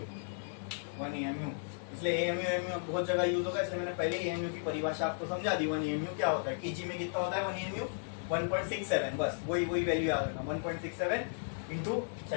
1 AMU, इसलिए AMU AMU बहुत जगह यूज होगा, इसलिए मैंने पहले AMU की परिभाषा आपको समझा दी। 1 AMU क्या होता है, केजी में कितना होता है 1 AMU, 1.67, बस वही वैल्यू याद रखना, 1.67 इंटू,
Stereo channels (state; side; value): silent; right; digital silence